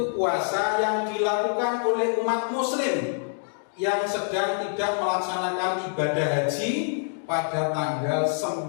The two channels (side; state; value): right; silent; digital silence